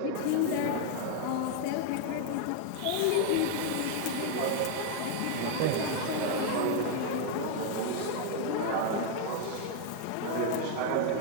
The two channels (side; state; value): both; different; correlation 0.00